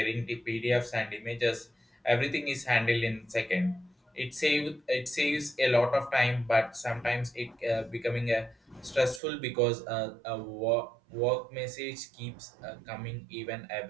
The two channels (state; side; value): drops out; left; at 9.2 s